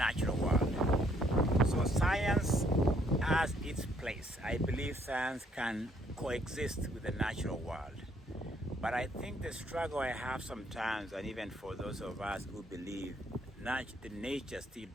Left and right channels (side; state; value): both; normal; correlation 0.67